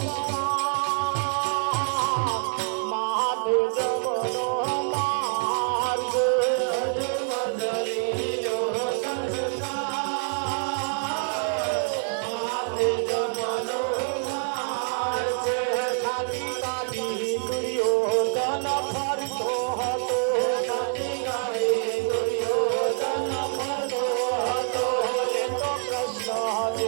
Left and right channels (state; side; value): silent; left; 61 dB below the other